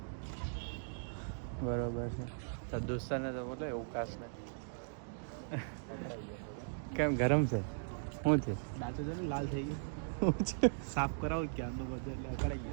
બરોબર છે. તો દોસ્તારને તો બોલો એવું કાશ ને. કેમ ગરમ છે? શું છે? દાંતો છે ને લાલ થઈ ગયો. શું છે? સાફ કરાવો ક્યારનો બધું એટલે અકળાઈ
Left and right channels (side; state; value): left; silent; digital silence